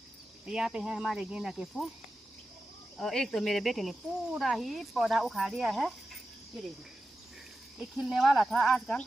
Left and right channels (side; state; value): both; normal; correlation 0.92